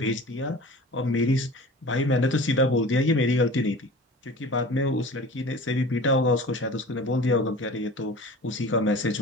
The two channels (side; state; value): both; normal; correlation 0.39